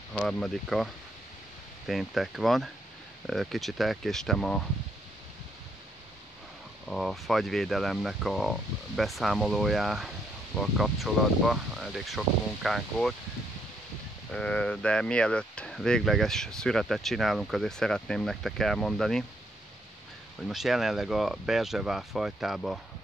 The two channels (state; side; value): normal; both; correlation 0.73